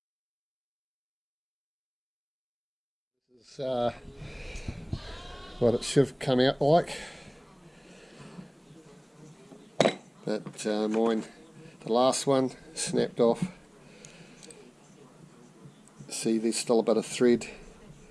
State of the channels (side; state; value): both; identical; correlation 1.00